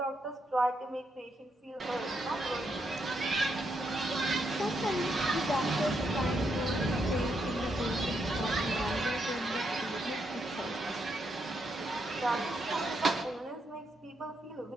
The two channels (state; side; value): normal; both; correlation 0.79